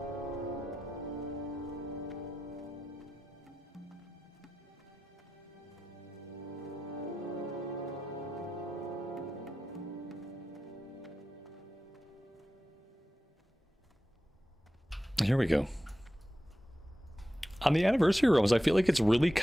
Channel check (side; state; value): both; normal; correlation 0.92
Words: Here we go. On the anniversary realms, I feel like it's really